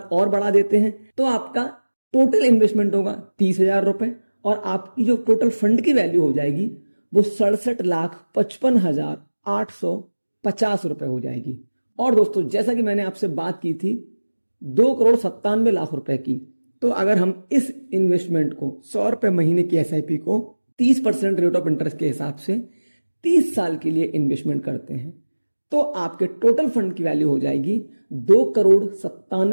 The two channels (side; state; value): both; inverted; correlation -1.00